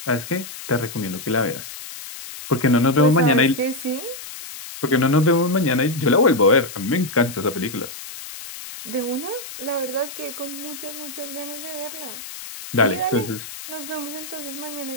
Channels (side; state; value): left; noise; hiss, 12 dB below the sound